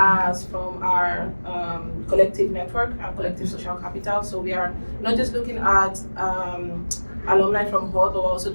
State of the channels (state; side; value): inverted; both; correlation -1.00